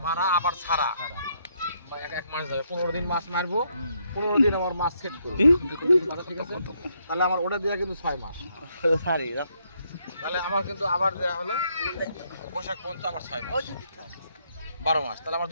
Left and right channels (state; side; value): inverted; both; correlation -0.74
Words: মারা আবার ছাড়া 1 মাস যাবে। 15 দিন মাছ মারবো, 15 দিন আমার মাছ সেট করবো। ঠিক আছে, তাহলে আমার ওটা দেওয়া কিন্তু 6 মাস। তাহলে আমার কিন্তু আবার দেওয়া হলো বৈশাখ পর্যন্ত আমার 6 মাস, 12 মাস। তাহলে আমার